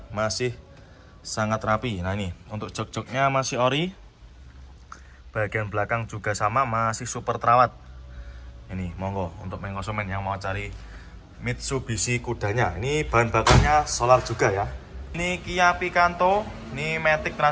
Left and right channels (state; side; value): identical; both; correlation 1.00